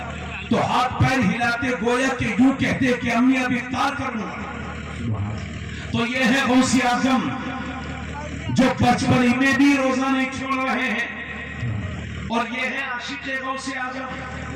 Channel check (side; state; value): both; identical; correlation 1.00